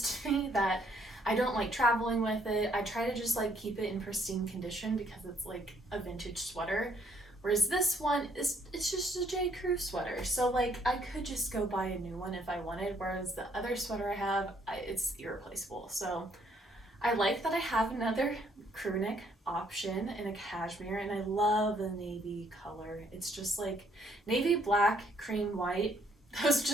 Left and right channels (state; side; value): normal; both; correlation 0.67